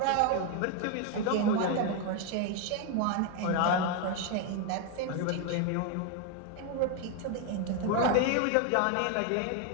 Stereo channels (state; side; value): different; both; correlation 0.01